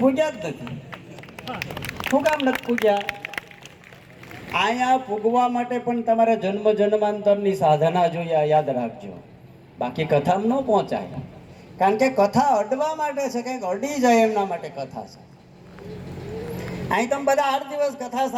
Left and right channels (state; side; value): identical; both; correlation 1.00